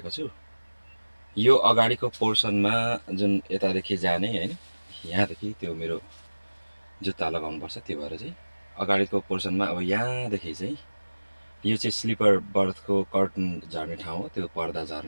छु। यो अगाडिको पोर्सनमा जुन यतादेखि जाने होइन, यहाँदेखि त्यो मेरो जुत्ता लगाउनुपर्छ, त्यो भएर चाहिँ अगाडिको पोर्सनमा अब यहाँदेखि चाहिँ यो चाहिँ स्लिपर बर्थको कर्टन झर्ने ठाउँ हो, त्यो पर्दा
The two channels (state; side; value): inverted; both; correlation -1.00